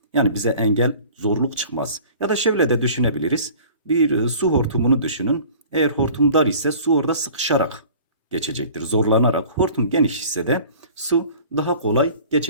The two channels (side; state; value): both; inverted; correlation -0.46